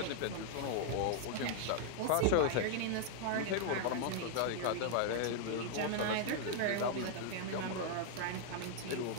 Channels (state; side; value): different; both; correlation 0.00